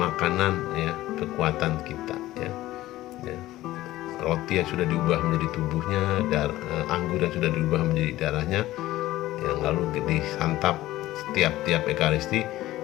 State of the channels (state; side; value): quieter; right; 16.0 dB